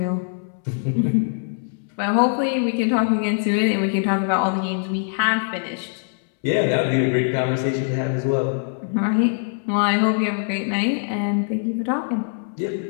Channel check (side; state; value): right; silent; 64 dB below the other